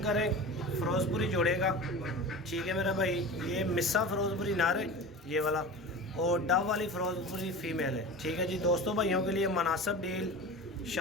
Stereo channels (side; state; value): both; normal; correlation 0.33